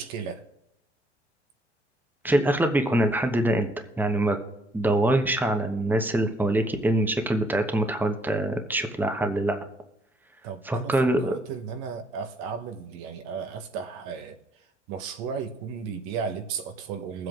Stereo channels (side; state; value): both; normal; correlation 0.67